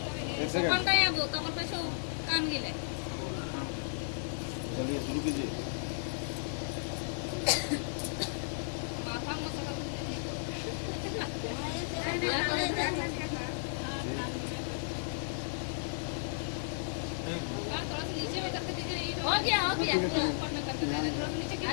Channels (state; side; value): silent; right; digital silence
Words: कौन का याबो कमर पे सो कान गिले चलिए शुरू कीजिए। पापा मसाला हो गया